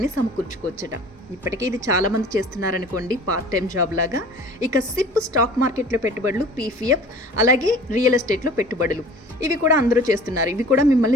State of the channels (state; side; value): normal; both; correlation 0.45